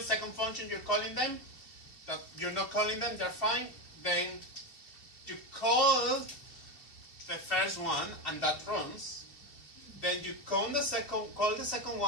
function, you're calling them. That you're not calling them, they're fine. Then you call the first one, and that runs. Then you call the second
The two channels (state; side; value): late; right; 2.7 ms